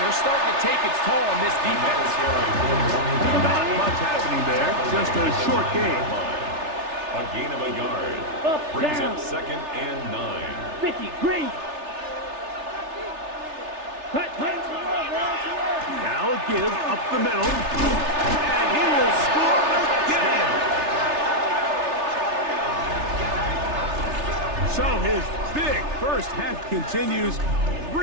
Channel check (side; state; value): left; late; 3.3 ms